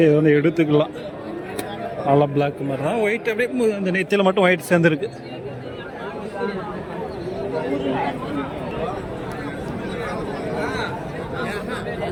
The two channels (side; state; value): both; identical; correlation 1.00